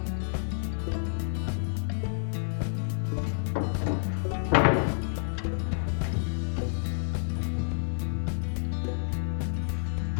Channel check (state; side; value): silent; right; digital silence